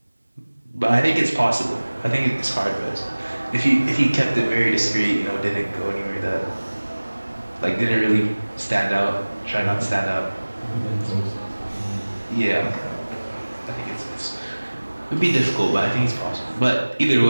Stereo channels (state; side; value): inverted; both; correlation -1.00